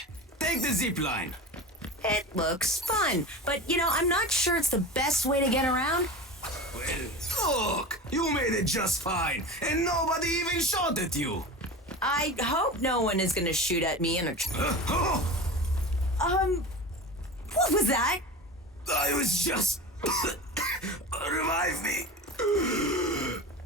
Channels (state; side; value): normal; both; correlation 0.30